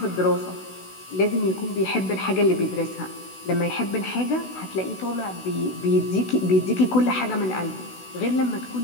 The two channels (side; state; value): right; late; 16 ms